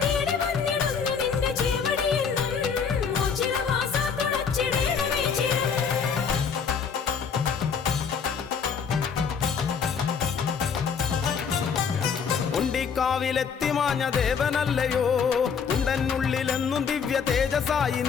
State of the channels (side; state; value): right; quieter; 6.4 dB